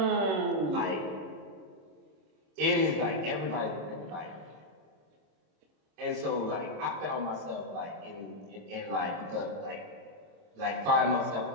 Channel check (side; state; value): left; late; 26 ms